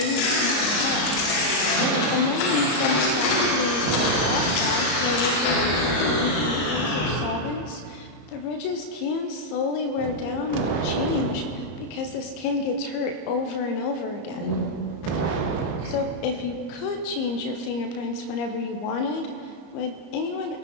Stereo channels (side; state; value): right; late; 34 ms